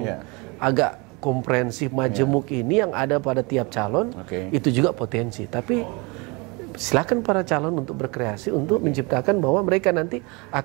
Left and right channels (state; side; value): quieter; left; 28.0 dB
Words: agak komprehensif, majemuk ini yang ada pada tiap calon, itu juga potensi. Tapi silakan para calon untuk berkreasi untuk menciptakan bahwa mereka nanti